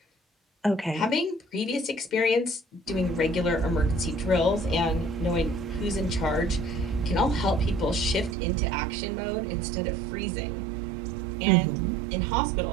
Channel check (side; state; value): left; drops out; at 8.3 s